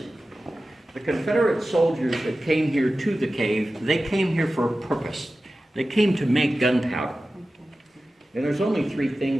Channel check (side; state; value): both; normal; correlation 0.95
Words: The Confederate soldiers that came here to the cave, they came here for a purpose. They came to make gunpowder. And there's only three